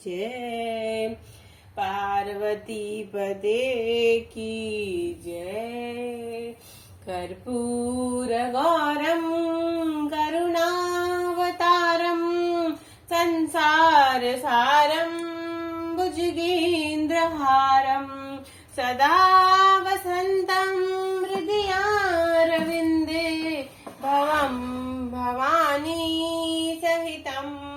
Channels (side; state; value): both; identical; correlation 1.00